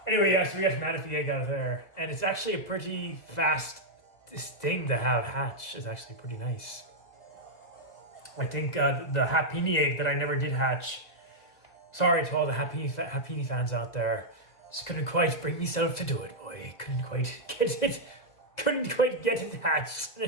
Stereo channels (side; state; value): right; late; 2.0 ms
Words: Anyway, yeah, so we got Manaphy egg out of there. And it's actually a pretty fast thing to have hatch. It's actually pretty nice. I think the Happini egg that I never did hatch. Sorry to all the Happini fans out there. Just couldn't quite bring myself to do it, boy. Couldn't quite get it hatched.